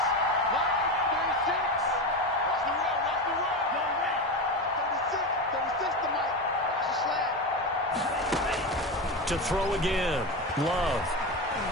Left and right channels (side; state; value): both; normal; correlation 0.19